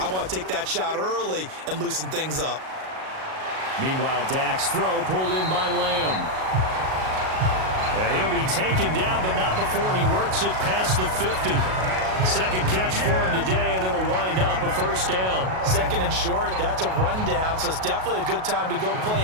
want to take that shot early and loosen things up. Meanwhile, Dak's throw pulled in by Lamb. And he'll be taken down, but not before he works it past the 50. Second catch for him today, and it'll wind up a 1st down. 2nd and short, that's a rundown, so it's definitely a good time to go play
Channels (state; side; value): late; left; 38 ms